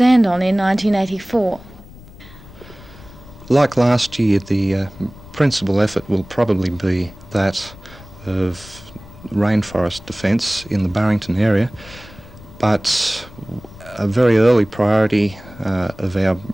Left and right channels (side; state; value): left; noise; rumble, 19 dB below the sound